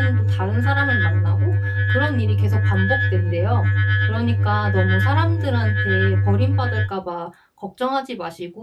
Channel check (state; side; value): identical; both; correlation 1.00